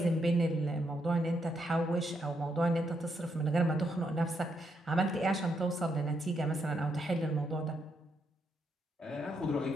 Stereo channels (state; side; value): normal; both; correlation 0.78